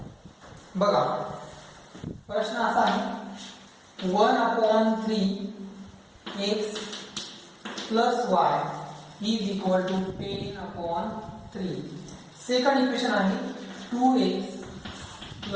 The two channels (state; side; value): identical; both; correlation 1.00